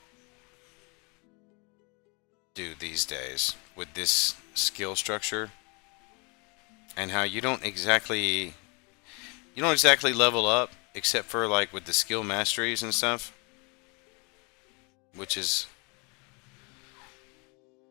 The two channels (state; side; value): quieter; right; 31.5 dB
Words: do these days with this skill structure, and how you don't exactly level up except for like with the skill masteries and stuff, which is